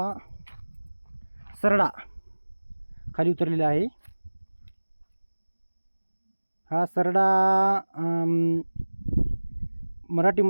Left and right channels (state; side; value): inverted; both; correlation -1.00